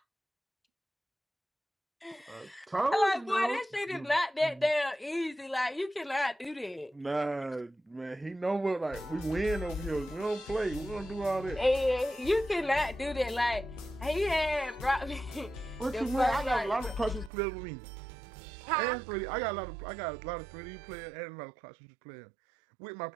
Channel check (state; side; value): drops out; left; at 17.3 s